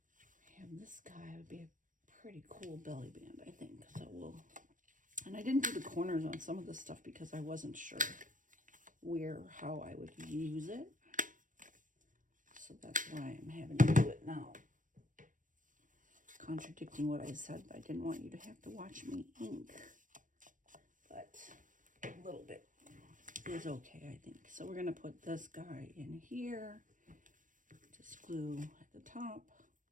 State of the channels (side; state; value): left; late; 0.38 ms